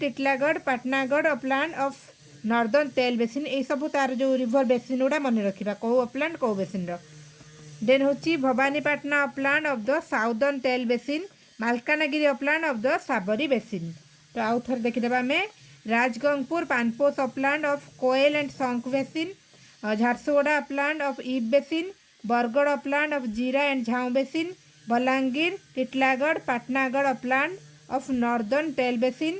Patnagarh upland of northern Tel basin. ये सब तार जो रिवर बेसिन गुड़ा मन रखा कौ अपलैंड कौ बेसिन। देन होची Bhawanipatna upland of the southern Tel basin, Malkangiri upland of the Sabari basin. तो आउ थर देखिदेबा आमे Rajgangpur Panposh upland of Koel and Sankh basin, Jharsuguda upland of Ib basin, Bargarh upland of Jira and Jhau basin, Balangir, Titlagarh, Patnagarh upland of northern Tel basin,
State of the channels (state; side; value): identical; both; correlation 1.00